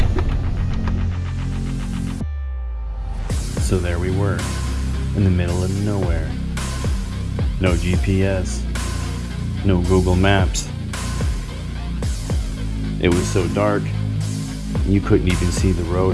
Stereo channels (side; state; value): both; identical; correlation 1.00